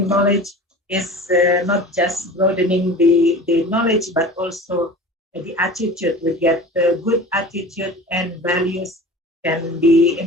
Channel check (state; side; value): normal; both; correlation 0.38